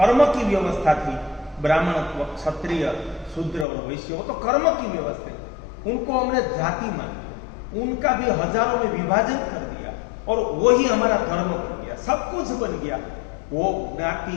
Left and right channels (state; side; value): drops out; right; at 3.7 s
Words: की व्यवस्था थी, ब्राह्मणत्व, क्षत्रिय, शूद्र और वैश्य, वो तो कर्म की व्यवस्था है, उनको हमने जाति मान लिया, उनका भी हजारों में विभाजन कर दिया और वही हमारा धर्म बन गया, सब कुछ बन गया। वो ज्ञाति